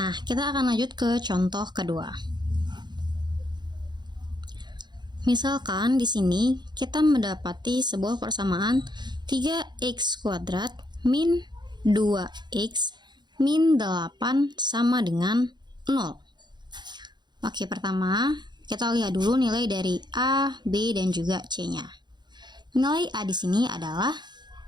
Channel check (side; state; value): left; late; 0.21 ms